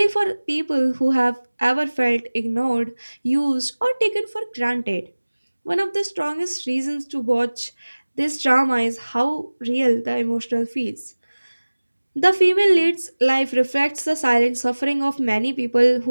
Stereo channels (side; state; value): both; inverted; correlation -1.00